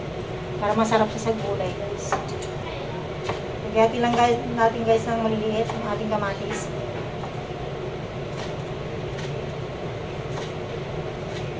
Para masarap siya sa gulay guys. Lagyan lang guys, natin guys ng maliliit ang ating kamatis.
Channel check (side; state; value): both; identical; correlation 1.00